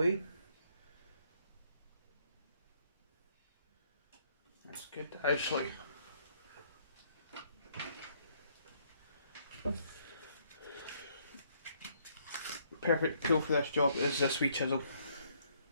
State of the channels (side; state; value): both; inverted; correlation -0.68